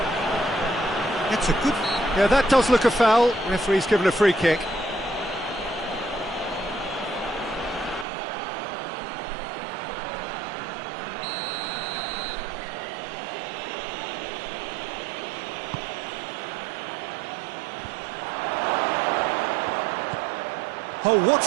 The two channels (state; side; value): drops out; left; at 8.1 s